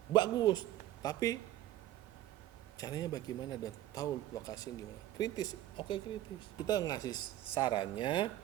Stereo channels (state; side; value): quieter; left; 13.8 dB